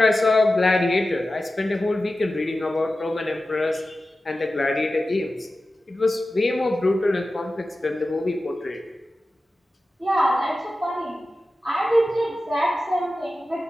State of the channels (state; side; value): normal; both; correlation 0.94